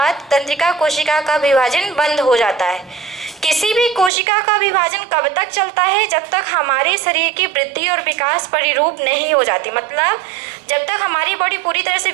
तंत्रिका कोशिका का विभाजन बंद हो जाता है। किसी भी कोशिका का विभाजन कब तक चलता है, जब तक हमारे शरीर की वृद्धि और विकास परिरूप नहीं हो जाती, मतलब जब तक हमारी बॉडी पूरी तरह से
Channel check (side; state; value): left; drops out; at 4.1 s